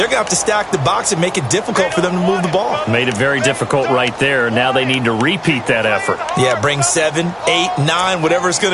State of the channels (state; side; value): identical; both; correlation 1.00